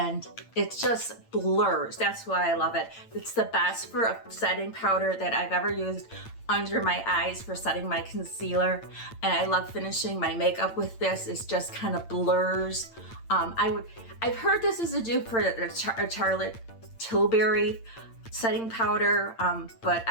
it just blurs. That's why I love it. It's the best for a setting powder that I've ever used under my eyes for setting my concealer, and I love finishing my makeup with this. It just kind of blurs. I've heard this is a dupe for a Charlotte Tilbury setting powder, but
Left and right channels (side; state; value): right; late; 8.8 ms